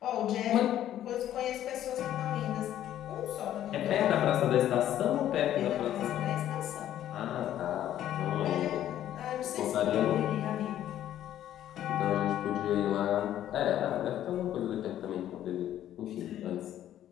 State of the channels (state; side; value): quieter; right; 11.8 dB